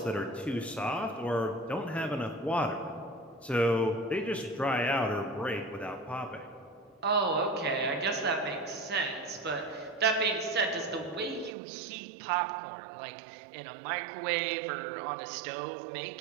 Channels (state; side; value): drops out; left; at 11.6 s